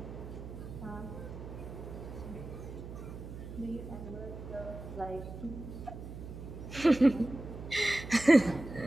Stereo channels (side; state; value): right; noise; hum, 10 dB below the sound